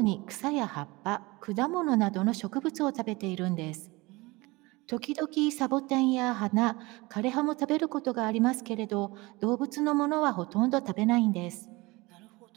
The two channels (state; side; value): quieter; left; 22.9 dB